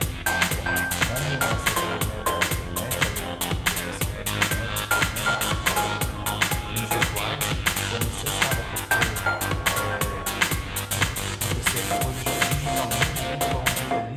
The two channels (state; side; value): identical; both; correlation 1.00